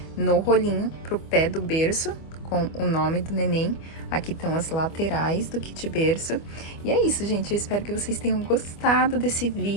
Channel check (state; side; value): late; right; 25 ms